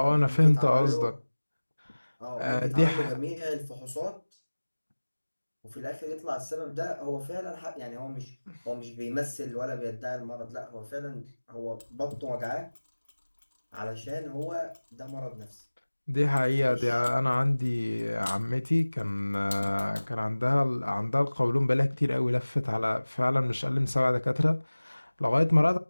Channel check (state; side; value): inverted; both; correlation -1.00